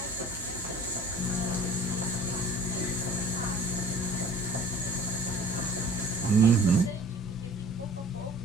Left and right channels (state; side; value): normal; both; correlation 0.47